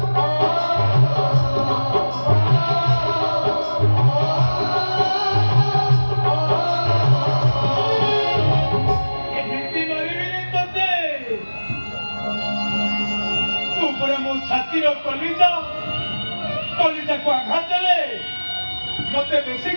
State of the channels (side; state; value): both; inverted; correlation -1.00